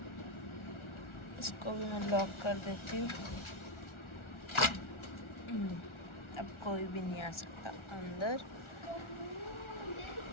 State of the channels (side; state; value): right; late; 1.4 ms